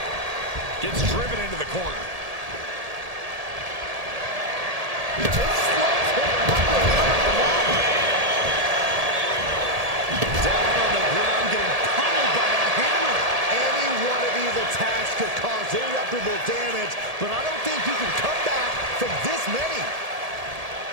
Gets driven into the corner. Down on the ground, getting pummeled by a hammer. Any one of these attacks could cause irreparable damage, but I don't think you can come back from this many.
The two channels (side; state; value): left; late; 1.7 ms